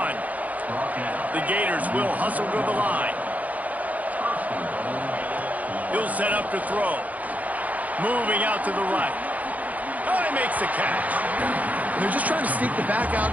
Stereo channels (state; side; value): late; left; 0.075 ms